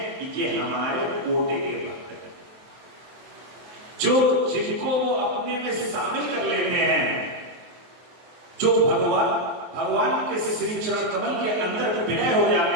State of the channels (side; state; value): left; late; 23 ms